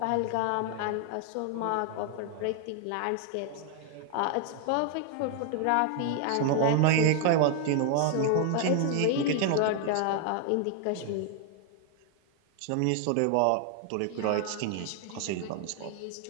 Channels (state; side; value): different; both; correlation 0.00